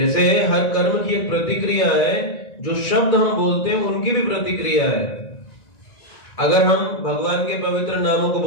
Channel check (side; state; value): right; late; 1.9 ms